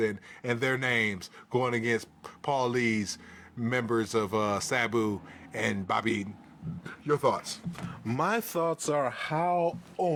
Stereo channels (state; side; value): identical; both; correlation 1.00